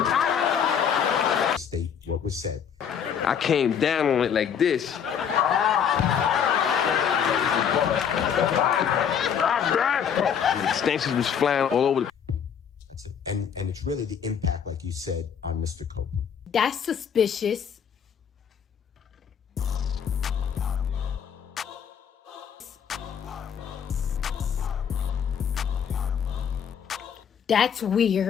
state what was said. I came down on it like this. The extensions was flying all over the. That's it. And it's really the impact, like you said, on Mr. Copeland. That's suspicious. That's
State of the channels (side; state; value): right; quieter; 7.8 dB